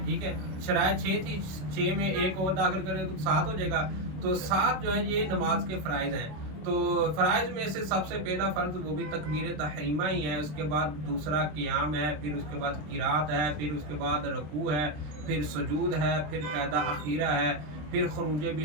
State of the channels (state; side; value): late; left; 27 ms